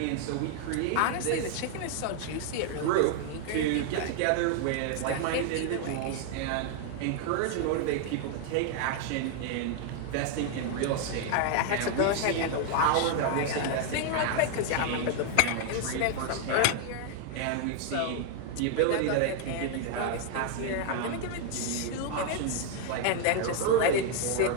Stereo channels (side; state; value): both; different; correlation 0.00